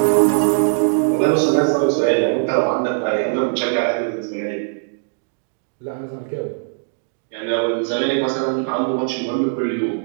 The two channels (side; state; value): left; silent; digital silence